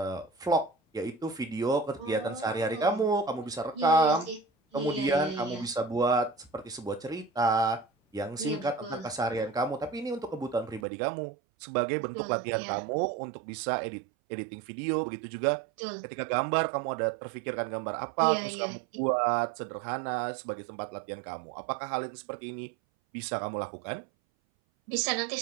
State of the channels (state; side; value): drops out; left; at 10.9 s